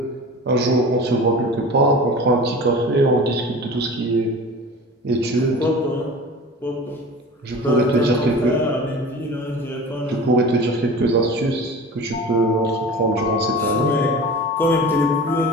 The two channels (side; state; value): both; normal; correlation 0.36